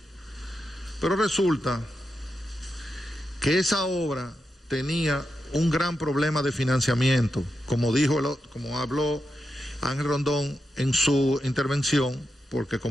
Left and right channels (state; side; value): normal; both; correlation 0.87